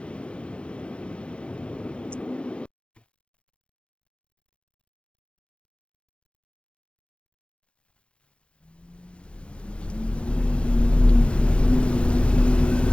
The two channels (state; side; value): late; right; 0.058 ms